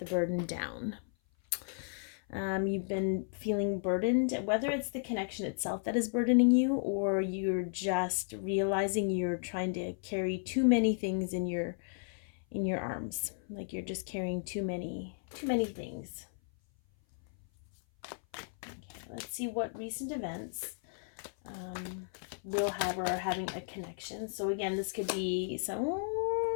burden down. You've been feeling burdened, whether it's the connection itself that is burdening you, or you're just realizing you're trying to carry too many things in your arms. Like you're just carrying too many things. Okay, let's see what recent events will have or are having a connection. So again, this could be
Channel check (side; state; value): right; silent; 55 dB below the other